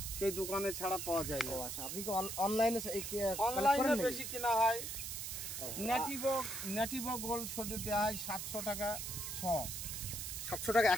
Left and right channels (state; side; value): noise; right; hiss, 5 dB below the sound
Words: সেই দোকানে ছাড়া পাওয়া যায় না। আচ্ছা, আপনি কি অনলাইনে অনলাইনে বেশি কেনা হয়। ন্যাটিভো গোল্ড সোডে দেওয়া হয় 700 টাকা 700 টাকা